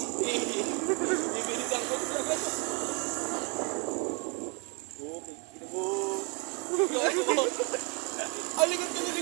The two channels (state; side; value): quieter; left; 33.8 dB